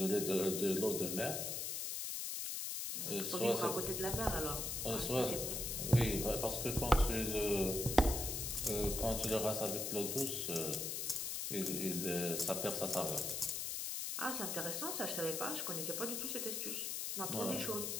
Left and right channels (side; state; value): left; noise; hiss, 2 dB below the sound